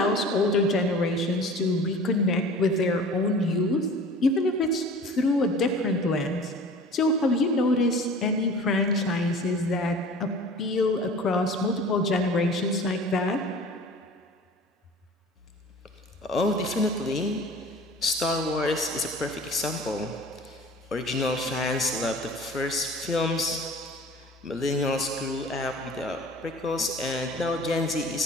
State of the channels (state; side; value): normal; both; correlation 0.43